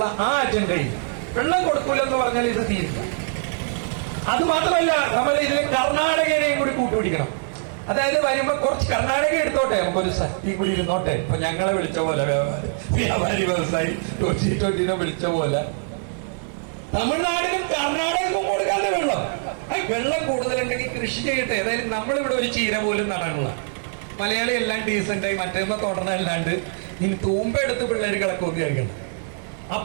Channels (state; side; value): silent; left; digital silence